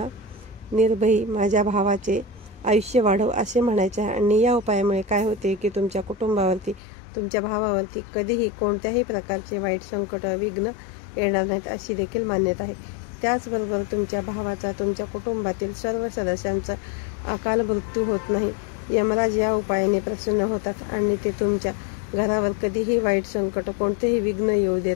निर्भयी माझ्या भावाचे आयुष्य वाढव असे म्हणायचे आहे. आणि या उपायामुळे काय होते की तुमच्या कुटुंबावरती, तुमच्या भावावरती कधीही कोणत्याही प्रकारचे वाईट संकट, विघ्न येणार नाहीत अशी देखील मान्यता आहे. त्याचबरोबर तुमच्या भावाचा, तुमच्या कुटुंबातील सर्व सदस्यांचा अकाल मृत्यू होत नाही. यमराज या उपायाने प्रसन्न होतात आणि ते तुमच्या घरावर कधीही वाईट संकट, कोणतेही विघ्न येऊ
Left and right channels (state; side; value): drops out; right; at 6.8 s